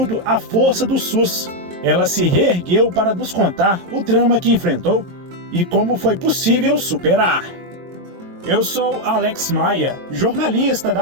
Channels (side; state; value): left; late; 22 ms